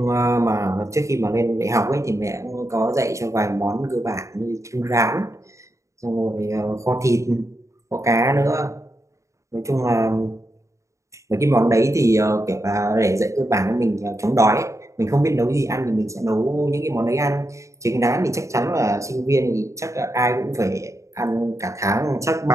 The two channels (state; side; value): late; left; 0.15 ms